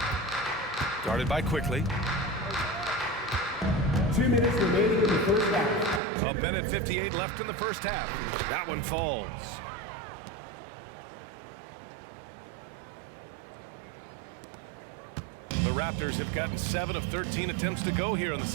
Guarded by Quickly. 2 minutes remaining in the first half. A minute 58 left in the first half. That one falls. The Raptors have gotten 7 of 13 attempts to go here in the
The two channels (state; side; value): drops out; left; at 6.0 s